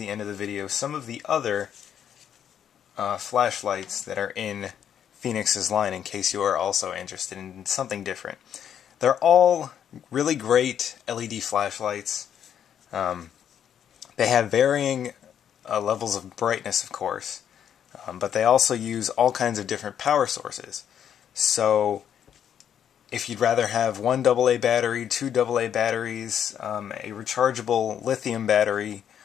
end of the video some of the other flashlights that are in Fenix's line in case you are also interested in something different. They're all really great LED flashlights. They have varying levels of brightness, of course, but they also use all kinds of different power sources. So if you'd rather have one AA battery, two AA batteries, a rechargeable lithium battery,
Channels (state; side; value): quieter; right; 9.1 dB